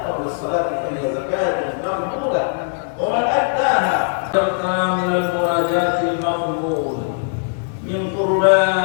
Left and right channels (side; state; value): right; silent; digital silence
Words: قبل الصلاة فهي زكاة مقبولة، ومن أداها من المناجاة المقبول من